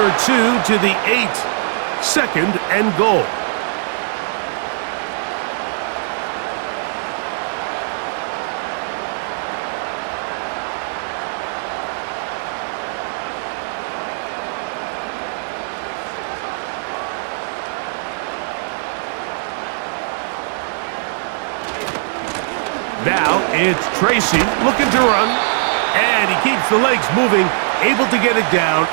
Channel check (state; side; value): silent; left; digital silence